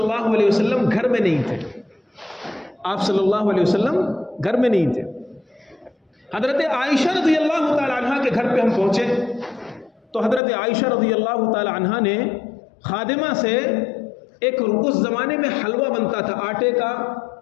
علیہ وسلم گھر میں نہیں تھے، آپ صلی اللہ علیہ وسلم گھر میں نہیں تھے۔ حضرت عائشہ رضی اللہ تعالی عنہ کے گھر پہ ہم پہنچے تو حضرت عائشہ رضی اللہ تعالی عنہ نے خادمہ سے ایک اس زمانے میں حلوہ بنتا تھا آٹے کا،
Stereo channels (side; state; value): right; drops out; at 10.4 s